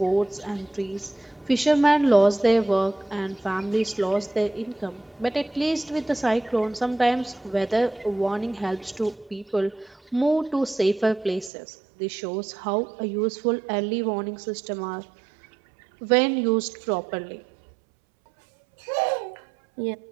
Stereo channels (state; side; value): drops out; left; at 11.5 s